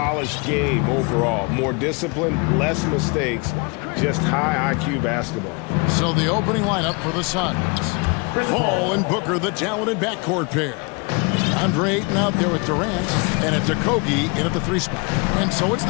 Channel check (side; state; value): right; quieter; 30.2 dB